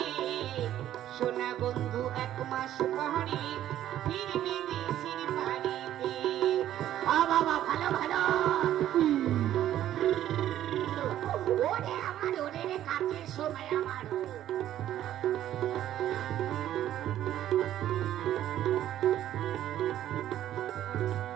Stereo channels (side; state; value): left; quieter; 12.1 dB